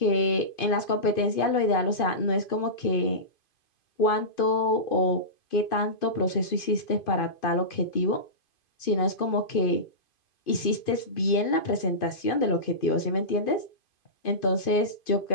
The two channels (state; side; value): late; right; 2.5 ms